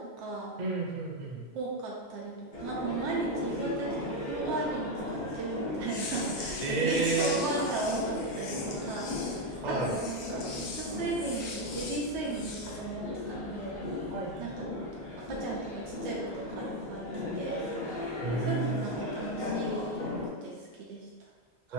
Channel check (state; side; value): normal; both; correlation 0.05